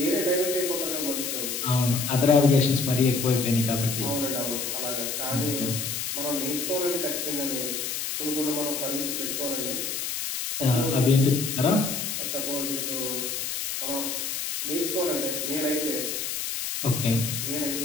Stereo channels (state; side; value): noise; left; hiss, 3 dB below the sound